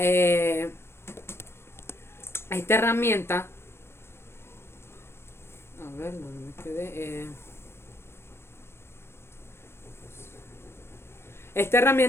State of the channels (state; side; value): late; right; 0.12 ms